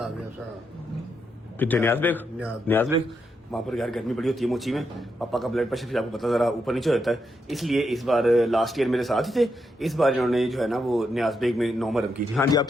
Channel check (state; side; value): normal; both; correlation 0.82